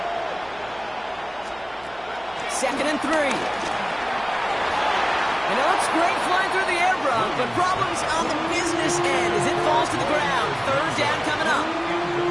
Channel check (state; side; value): noise; right; hum, 25 dB below the sound